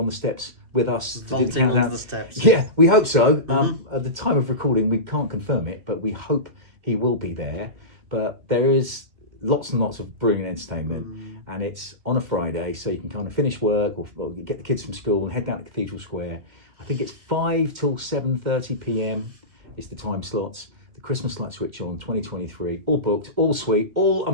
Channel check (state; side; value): late; left; 2.1 ms